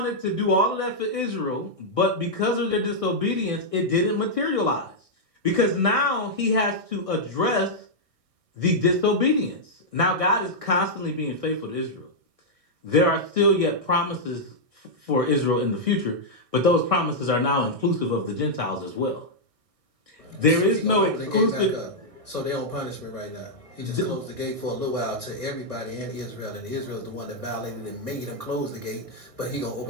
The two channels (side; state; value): left; late; 1.6 ms